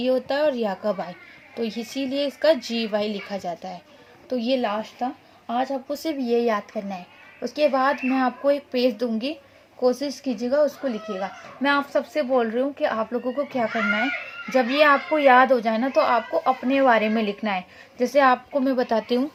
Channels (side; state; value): both; identical; correlation 1.00